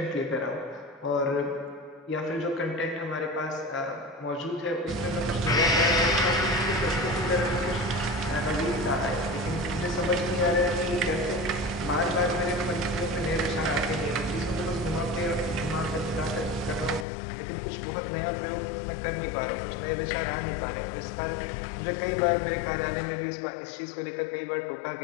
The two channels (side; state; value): right; drops out; at 17.1 s